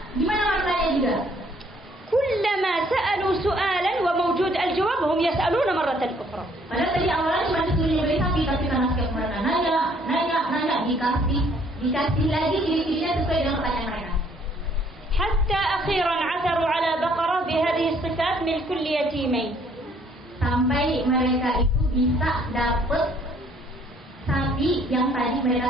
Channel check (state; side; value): normal; both; correlation 0.63